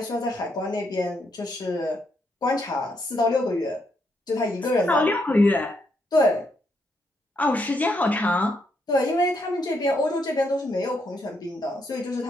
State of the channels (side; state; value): both; normal; correlation 0.77